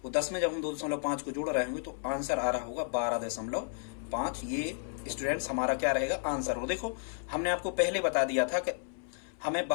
और 10 में जब हम 2.5 को जोड़ रहे होंगे तो आंसर आ रहा होगा 12.5। ये स्टूडेंट्स हमारा क्या रहेगा आंसर। और देखो हमने आपको पहले बता दिया था कि हमें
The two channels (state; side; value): silent; right; 56 dB below the other